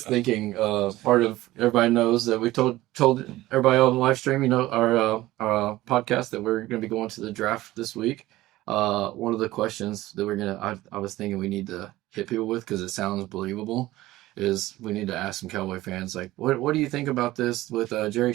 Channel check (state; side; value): quieter; left; 17.0 dB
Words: thinking part of everybody knows that we told everybody on the live stream, you know, our podcast that we're going to be going to the draft this week. One of the questions that I was thinking we need to hit people with because it sounds believable is we need to ask some Cowboy fans like what do you think about this with Jerry